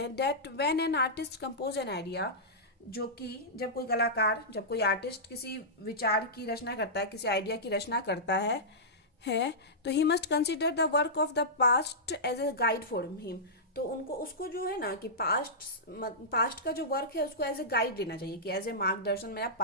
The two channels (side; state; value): both; normal; correlation -0.14